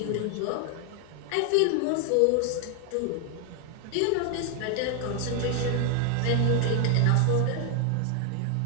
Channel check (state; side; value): different; both; correlation 0.01